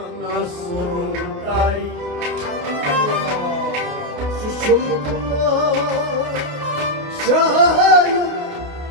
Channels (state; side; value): late; left; 28 ms